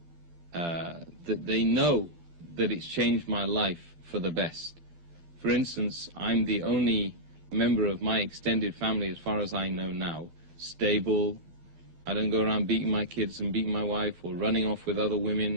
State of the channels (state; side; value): late; left; 12 ms